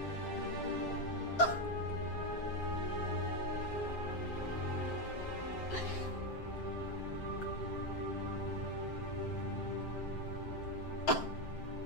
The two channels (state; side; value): late; right; 7.6 ms